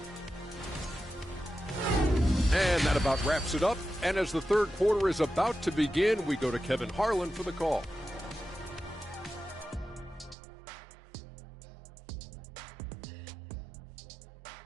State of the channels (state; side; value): drops out; left; at 10.4 s